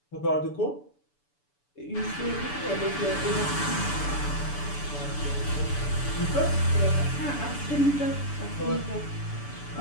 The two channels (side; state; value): right; late; 6.9 ms